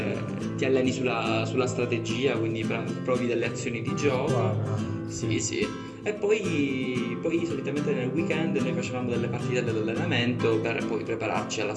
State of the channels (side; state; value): both; identical; correlation 1.00